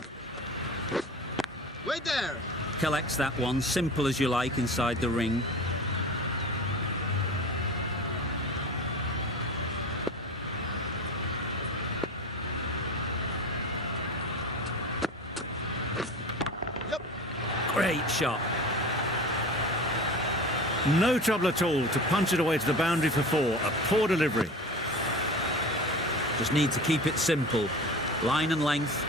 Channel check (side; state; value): both; normal; correlation 0.34